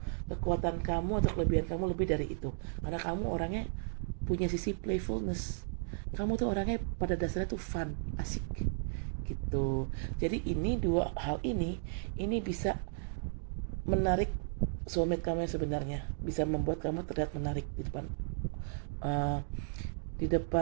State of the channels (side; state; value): left; silent; digital silence